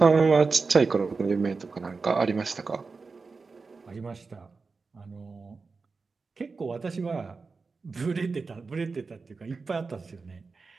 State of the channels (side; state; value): left; quieter; 4.4 dB